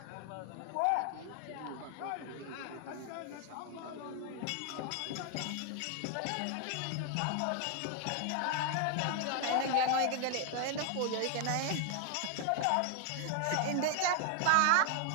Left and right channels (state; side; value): different; both; correlation 0.00